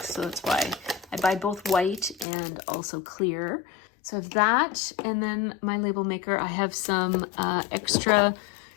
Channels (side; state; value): right; drops out; at 2.2 s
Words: so that's why I buy both white and also clear. So I have that, and then my label maker, I have some extra